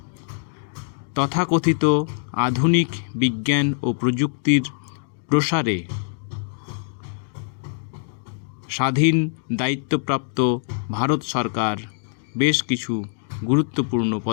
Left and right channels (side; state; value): right; silent; 62 dB below the other